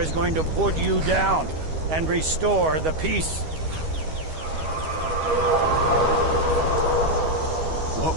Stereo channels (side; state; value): left; late; 13 ms